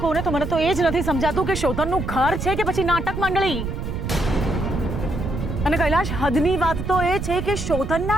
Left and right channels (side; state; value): right; noise; rumble, 5 dB below the sound